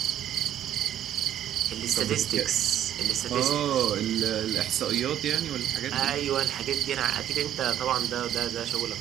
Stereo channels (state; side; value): quieter; left; 11.1 dB